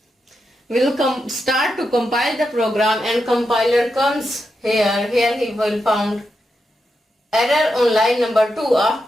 will start to compile the program and compiler comes here he will found error on line number 2.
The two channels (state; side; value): normal; both; correlation 0.86